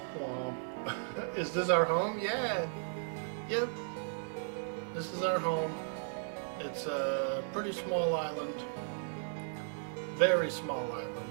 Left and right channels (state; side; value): silent; left; 54 dB below the other